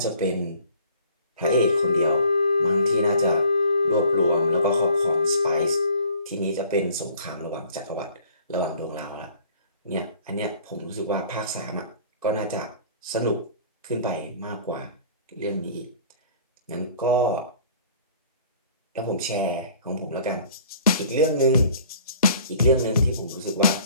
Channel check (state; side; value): inverted; both; correlation -0.52